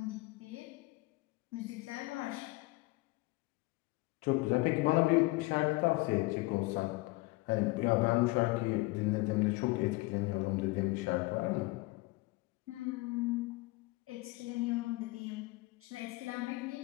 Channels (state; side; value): quieter; right; 22.8 dB